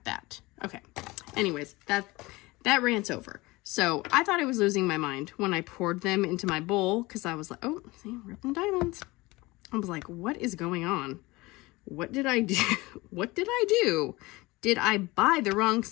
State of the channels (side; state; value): right; quieter; 21.8 dB